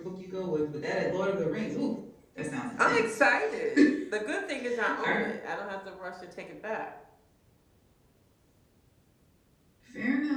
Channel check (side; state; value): both; identical; correlation 1.00